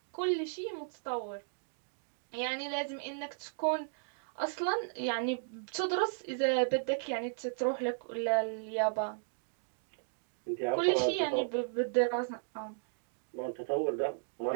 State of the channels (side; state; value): left; silent; digital silence